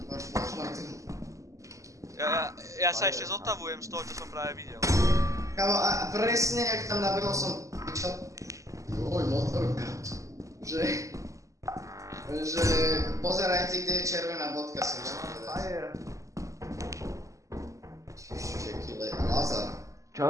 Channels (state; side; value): late; left; 0.16 ms